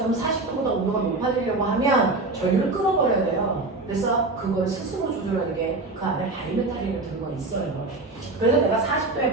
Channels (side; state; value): left; quieter; 3.2 dB